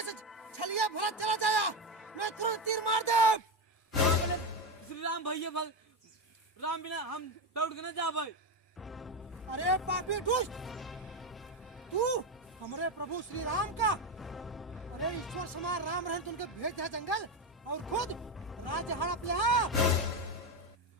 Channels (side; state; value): both; normal; correlation 0.13